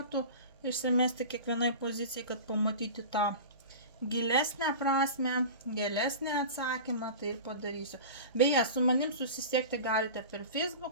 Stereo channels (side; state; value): both; inverted; correlation -0.34